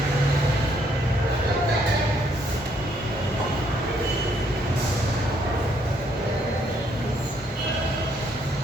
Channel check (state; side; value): normal; both; correlation 0.70